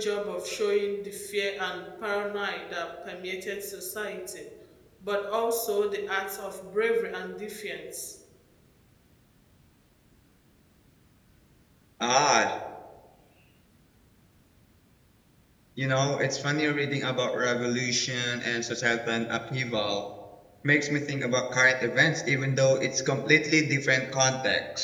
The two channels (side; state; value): both; identical; correlation 1.00